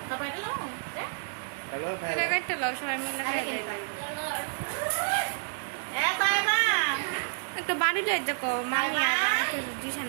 তারপর এটা লো এটা কাটতে লাও সবাই মিলে এ তাই মা একটা বাড়ি যাই দেখো মামি আর আমাকে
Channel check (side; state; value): left; silent; 58 dB below the other